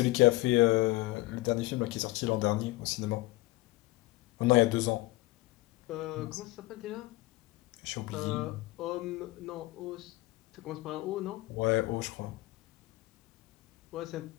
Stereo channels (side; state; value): right; quieter; 19.5 dB